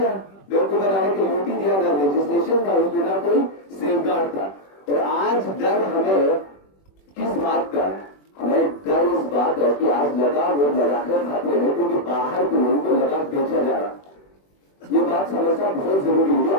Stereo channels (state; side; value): late; right; 21 ms